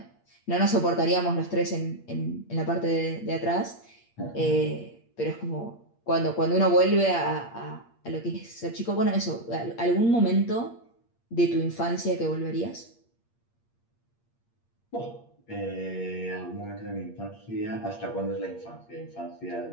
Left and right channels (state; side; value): late; right; 8.6 ms